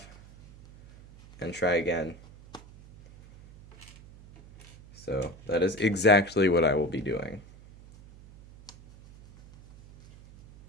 and try again. So that is exactly what I will be doing.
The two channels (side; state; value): right; noise; hum, 21 dB below the sound